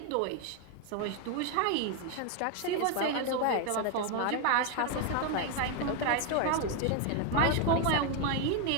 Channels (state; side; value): different; both; correlation 0.01